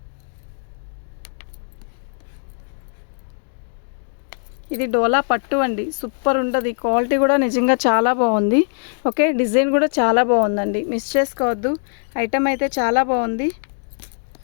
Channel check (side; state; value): right; silent; digital silence